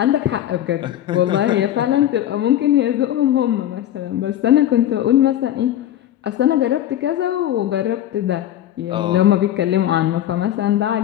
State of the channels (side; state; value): right; quieter; 12.0 dB